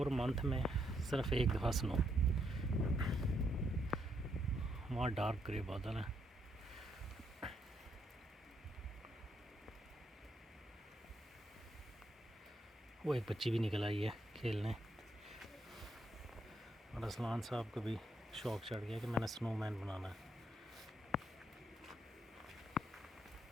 मंथ में सिर्फ एक दफ़ा स्नो। वहाँ डार्क ग्रे बादल है। वो एक बच्ची भी निकल आई है खेलने और असलान साहब को भी शौक चढ़ गया कि मैंने स्नोमैन बनाना है।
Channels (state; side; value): normal; both; correlation 0.76